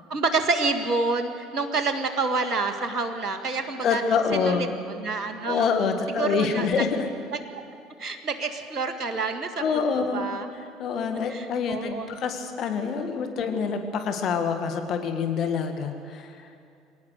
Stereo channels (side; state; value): both; normal; correlation 0.49